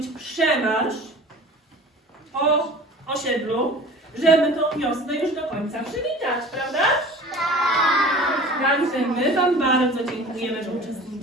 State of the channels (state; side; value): normal; both; correlation 0.41